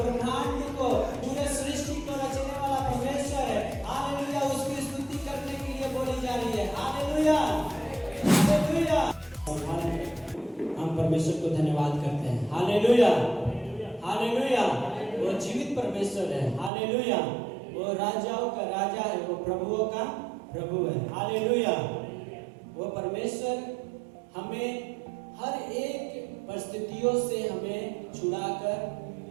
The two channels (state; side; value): drops out; left; at 16.7 s